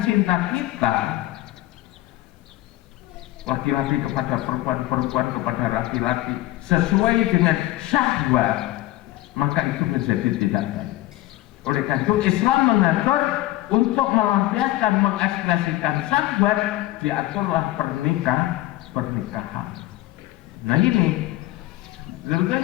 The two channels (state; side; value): quieter; right; 16.6 dB